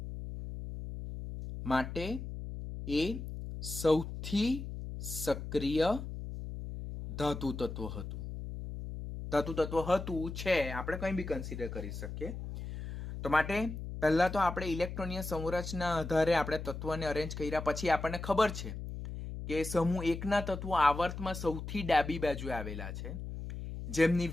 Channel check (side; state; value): left; noise; hum, 8 dB below the sound